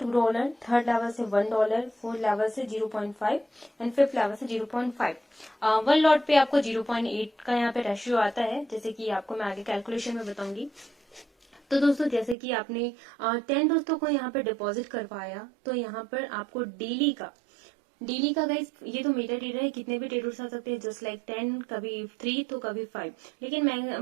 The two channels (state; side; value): drops out; left; at 12.4 s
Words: थर्ड लेवल से $1, फोर्थ लेवल से 0.5 एंड फिफ्थ लेवल से 0.5। वन लॉट पे आपको 0.8 का यहाँ पे रेशियो आता है, जैसे कि आपको मैं आगे कैलकुलेशन में बताऊंगी। तो दोस्तों जैसे कि आपने 10 दोस्तों को यहाँ पे डिपॉजिट करवाया, तो यहाँ पर आपको डेली का गाइस, ये तो मेटा ट्रेडर है, कितने भी ट्रेडर्स आ सकते हैं, जस्ट लाइक 10, कभी 3 तो कभी 5। लेकिन